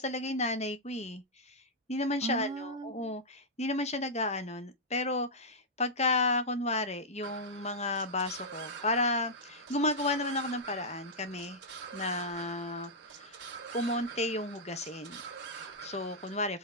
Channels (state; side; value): normal; both; correlation -0.08